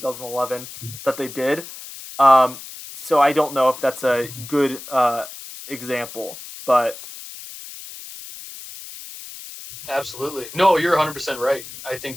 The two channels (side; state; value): left; noise; hiss, 14 dB below the sound